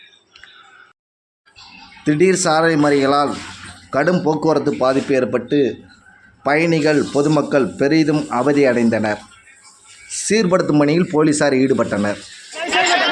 திடீர் சாலை மறியலால் கடும் போக்குவரத்து பாதிப்பு ஏற்பட்டு பயணிகள் பொதுமக்கள் பெரிதும் அவதியடைந்தனர். சீர்படுத்தும் பணியில் போலீசார் ஈடுபட்டனர்.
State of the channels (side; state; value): both; identical; correlation 1.00